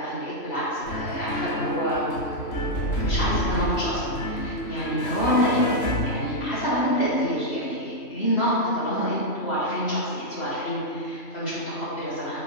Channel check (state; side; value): late; right; 3.0 ms